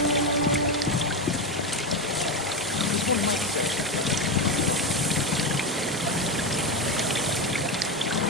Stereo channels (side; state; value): both; normal; correlation 0.15